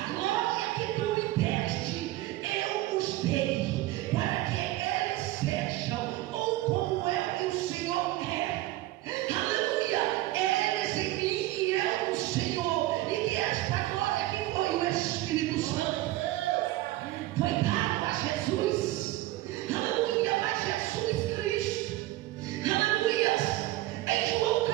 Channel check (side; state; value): left; quieter; 17.0 dB